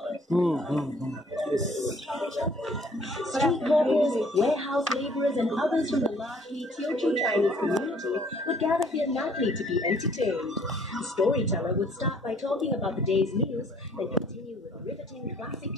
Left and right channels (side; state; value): both; normal; correlation 0.59